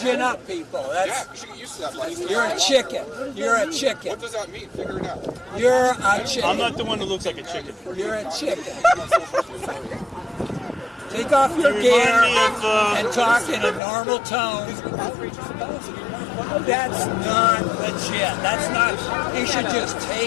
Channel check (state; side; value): drops out; right; at 13.8 s